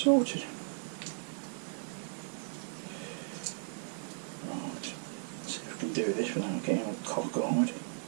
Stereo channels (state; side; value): silent; left; 54 dB below the other